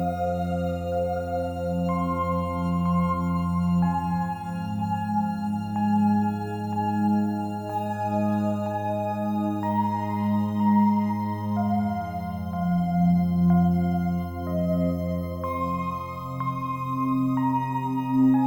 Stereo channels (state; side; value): identical; both; correlation 1.00